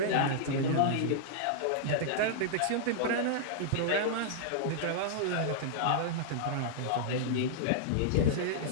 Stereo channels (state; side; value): different; both; correlation -0.02